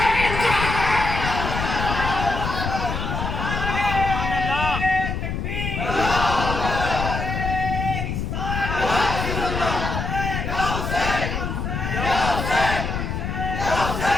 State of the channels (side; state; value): left; noise; rumble, 3 dB below the sound